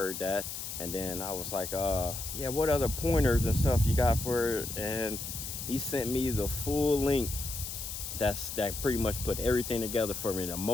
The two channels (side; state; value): left; noise; hiss, 7 dB below the sound